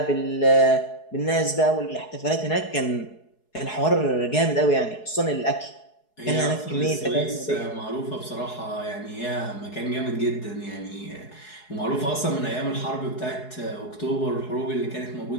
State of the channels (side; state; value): right; late; 4.7 ms